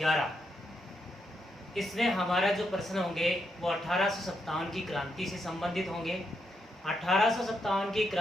इसमें हमारा जो प्रश्न होंगे वो 1857 की क्रांति से संबंधित होंगे। 1857 की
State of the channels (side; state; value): both; normal; correlation 0.81